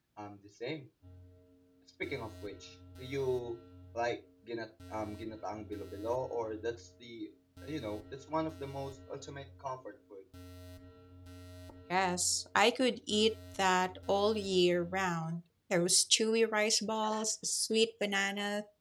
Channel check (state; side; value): identical; both; correlation 1.00